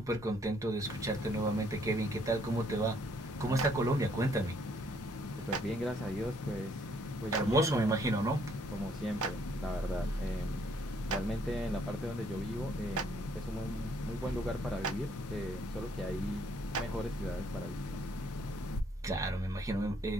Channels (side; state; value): both; normal; correlation 0.66